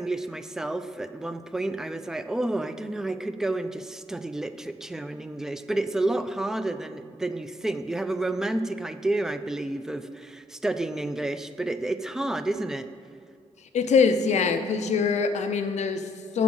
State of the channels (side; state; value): both; normal; correlation 0.73